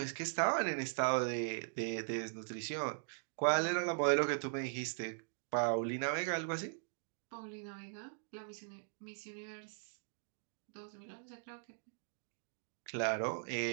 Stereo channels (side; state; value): left; silent; digital silence